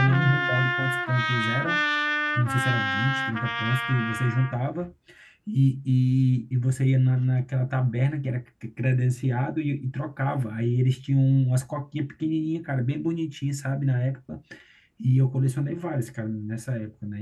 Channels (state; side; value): identical; both; correlation 1.00